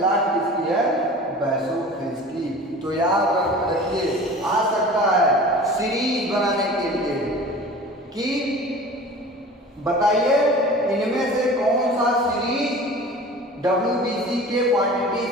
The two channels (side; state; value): both; normal; correlation 0.40